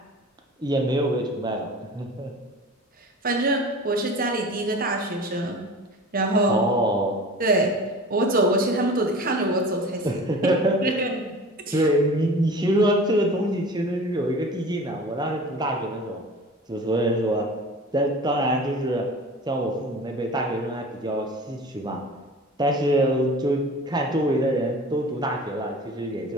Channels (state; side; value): normal; both; correlation 0.39